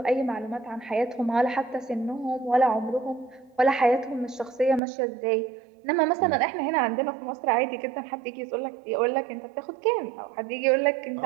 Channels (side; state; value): left; drops out; at 4.8 s